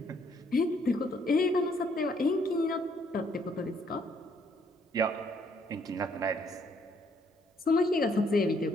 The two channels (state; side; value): normal; both; correlation 0.68